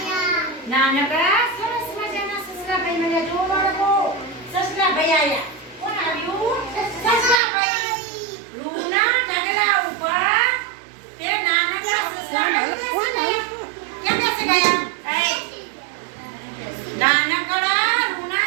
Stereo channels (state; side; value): drops out; left; at 7.4 s